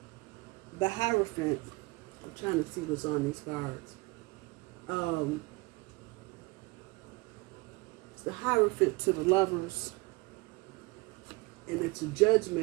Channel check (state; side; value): quieter; left; 24.2 dB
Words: the Hierophant, I'm trying to see what's on these cards. It's the Hierophant to the Lovers, and it's a